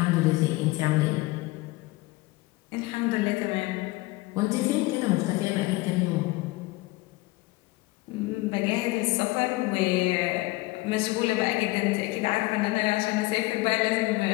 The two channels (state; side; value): quieter; right; 21.2 dB